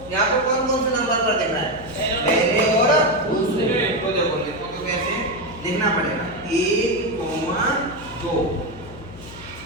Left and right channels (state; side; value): noise; left; hum, 17 dB below the sound